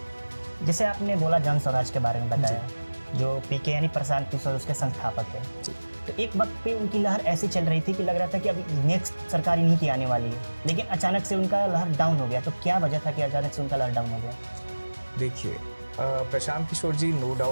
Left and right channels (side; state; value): both; inverted; correlation -1.00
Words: जैसे आपने बोला जन स्वराज के बारे में बताया, जो पीके यानी प्रशांत किशोर उसके संस्थापक है, तो एक वक्त पे उनकी लहर ऐसी चल रही थी कि लग रहा था कि अब नेक्स्ट सरकार इन्हीं की आने वाली है, लेकिन अचानक से उनका लहर डाउन हो गया। तो क्या वजह था कि अचानक से उनका लहर डाउन हो गया? देखिए, प्रशांत किशोर जी नो